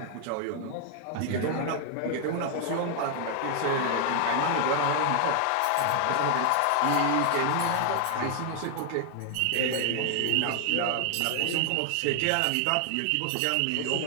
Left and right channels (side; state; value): both; different; correlation 0.00